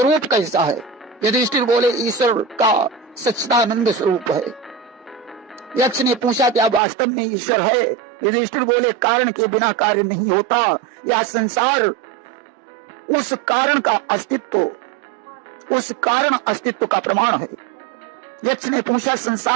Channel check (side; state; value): left; drops out; at 6.8 s